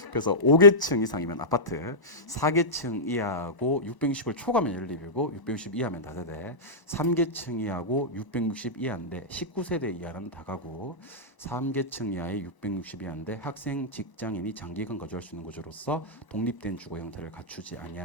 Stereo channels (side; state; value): right; late; 1.0 ms